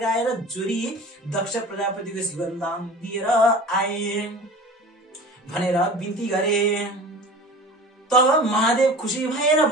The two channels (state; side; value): normal; both; correlation 0.38